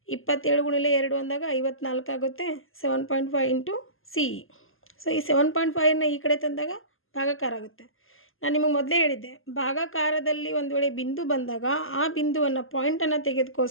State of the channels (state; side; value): late; right; 0.60 ms